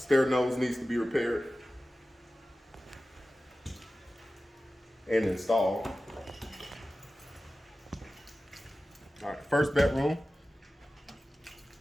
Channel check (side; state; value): both; normal; correlation 0.95